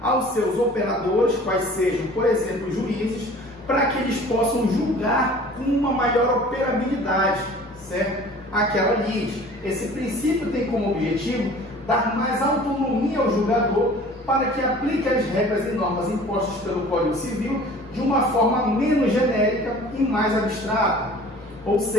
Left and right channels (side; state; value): both; normal; correlation 0.46